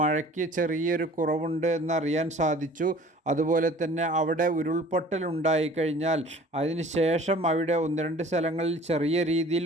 ചെറിയൊരു കുറവുണ്ട് എന്നറിയാൻ സാധിച്ചു. അതുപോലെ തന്നെ അവിടെ ഉരുൾപൊട്ടൽ ഉണ്ടായിക്കഴിഞ്ഞാൽ അതിന് ശേഷം അവിടെ 1-2 സ്ഥലങ്ങളിൽ ചെറിയ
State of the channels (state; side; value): normal; both; correlation 0.48